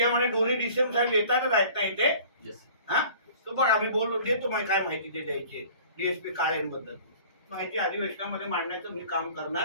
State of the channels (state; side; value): inverted; both; correlation -0.47